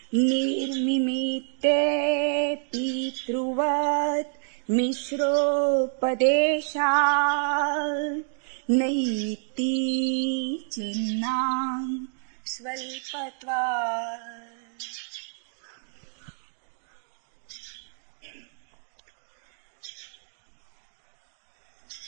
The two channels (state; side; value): silent; left; digital silence